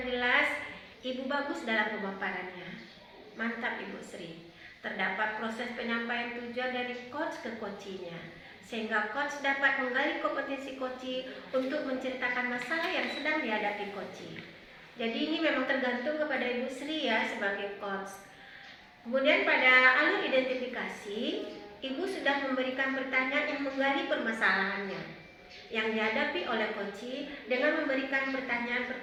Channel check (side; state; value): both; identical; correlation 1.00